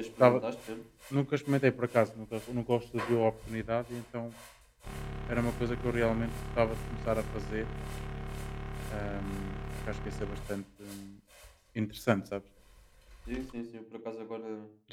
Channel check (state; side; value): identical; both; correlation 1.00